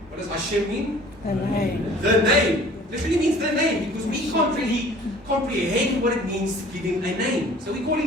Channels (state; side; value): normal; both; correlation 0.50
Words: What does Hashem mean? The name. The name. Literally means the name because we can't really comprehend what it means to give Him a name. So we call